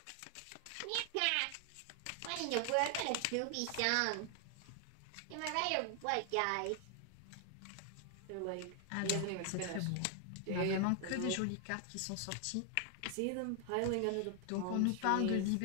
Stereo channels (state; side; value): different; both; correlation 0.00